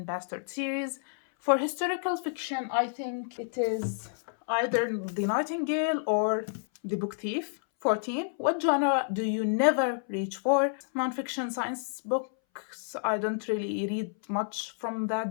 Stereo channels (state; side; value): silent; right; 58 dB below the other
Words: Bastard series. For historical fiction, I think it is either The Nightingale or The Book Thief. 14. What genre do you never reach for? Nonfiction science books. I don't really read much from